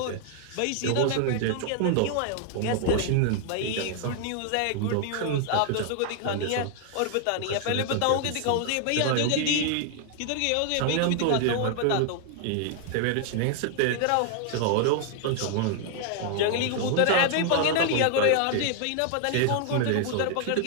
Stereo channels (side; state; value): both; different; correlation 0.00